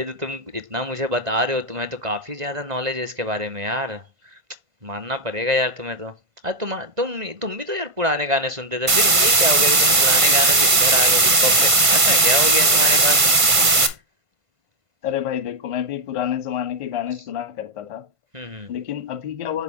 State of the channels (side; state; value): left; late; 1.5 ms